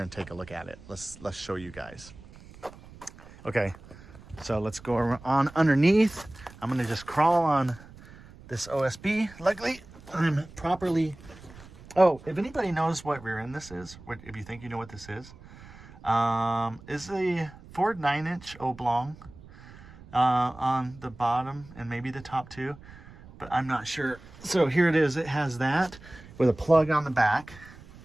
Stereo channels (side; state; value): right; noise; rumble, 20 dB below the sound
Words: and take a look at it. Let's show you guys. Okay, so let's go on underneath. I'm gonna just crawl on this OSB. Luckily, I'm properly. Oh, if anybody knows what rear end this is, if you think you know what this is the Ford 9-inch oblong on the bottom and maybe the top too, but I'm not sure. So here it is. It has that with a plug on the back.